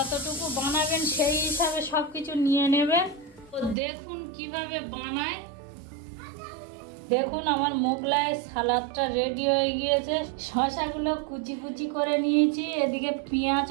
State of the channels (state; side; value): drops out; left; at 3.8 s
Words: বানাবেন সেই হিসাবে সবকিছু নিয়ে নেবেন। তো দেখুন কিভাবে বানায়। দেখুন আমার মোগলাই সালাদটা রেডি হয়ে গিয়েছে। শসাগুলো কুচি কুচি করে নিয়েছি, এদিকে